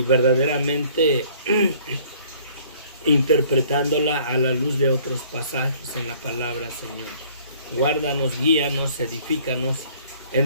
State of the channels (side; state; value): both; inverted; correlation -0.56